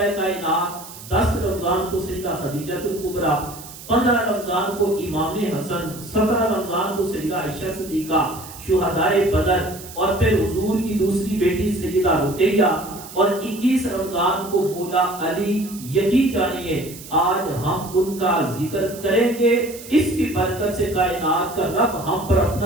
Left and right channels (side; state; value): right; noise; hiss, 15 dB below the sound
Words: کائنات، 10 رمضان کو سیدہ خدیجہ الکبریٰ، 15 رمضان کو امام حسن، 17 رمضان کو سیدہ عائشہ صدیقہ شہدائے بدر، اور پھر حضور کی دوسری بیٹی سیدہ رقیہ، اور 21 رمضان کو مولا علی۔ یقین جانیے آج ہم ان کا ذکر کریں گے، اس کی برکت سے کائنات کا رب ہم پر